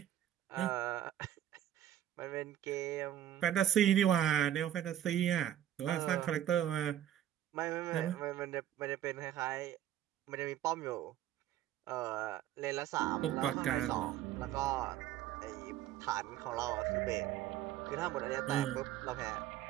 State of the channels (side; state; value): left; quieter; 11.7 dB